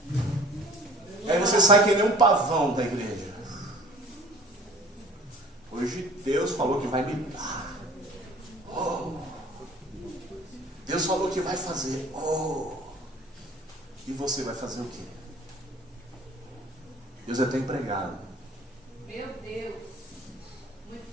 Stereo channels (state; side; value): normal; both; correlation 0.47